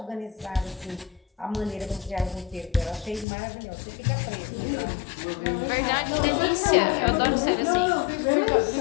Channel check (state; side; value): drops out; right; at 3.2 s